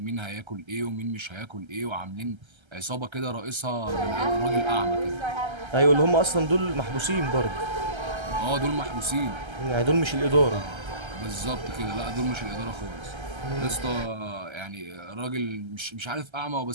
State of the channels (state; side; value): late; left; 1.3 ms